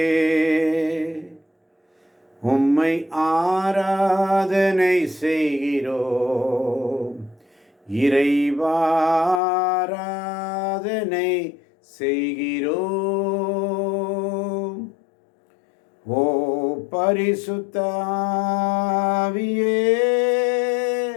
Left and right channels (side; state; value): right; drops out; at 9.4 s